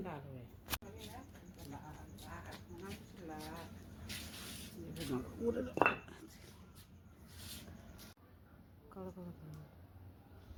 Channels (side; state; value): both; identical; correlation 1.00